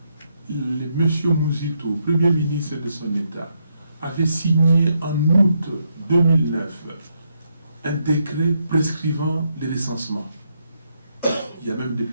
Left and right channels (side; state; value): both; inverted; correlation -0.78